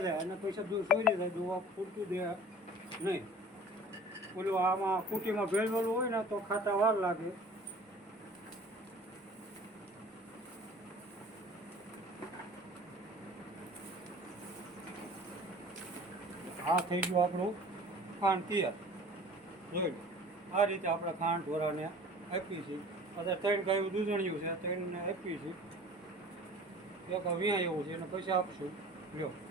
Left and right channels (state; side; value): normal; both; correlation 0.45